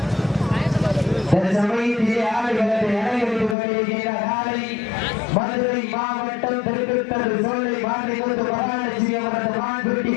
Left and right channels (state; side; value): drops out; right; at 3.6 s